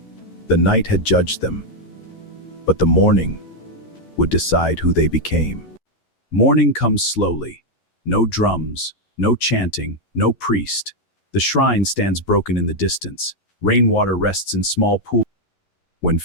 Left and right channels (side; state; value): right; late; 11 ms